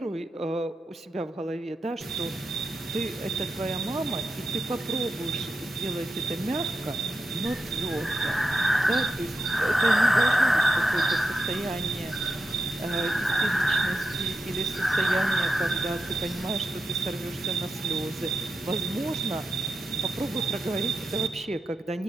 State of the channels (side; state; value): both; normal; correlation 0.88